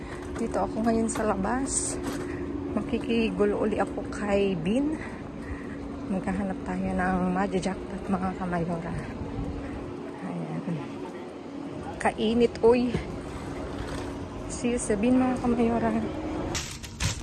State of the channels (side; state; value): both; identical; correlation 1.00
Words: Dito ako ngayon sa labas. Makikigulo uli ako kay Bin. Maghahanap tayo ng madja-jackpot mga kamayora. Ayan. Kainit, uy. See you sa Bin mga kamayora.